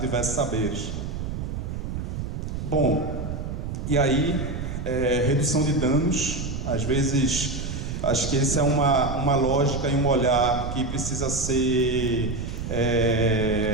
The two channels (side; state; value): right; noise; rumble, 5 dB below the sound